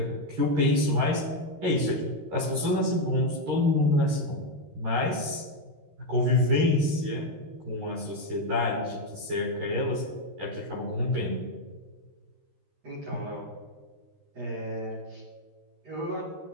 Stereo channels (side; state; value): left; late; 13 ms